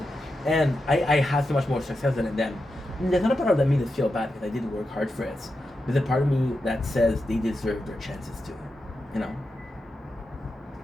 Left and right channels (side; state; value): both; normal; correlation 0.88